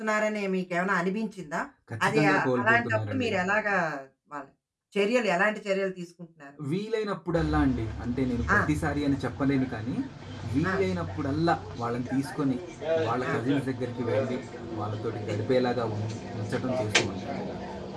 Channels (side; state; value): both; identical; correlation 1.00